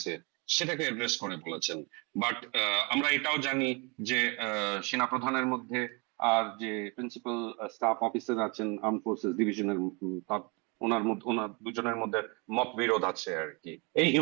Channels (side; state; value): left; quieter; 30.3 dB